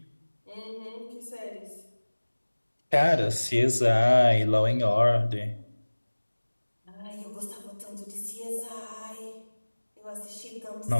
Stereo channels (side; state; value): both; inverted; correlation -1.00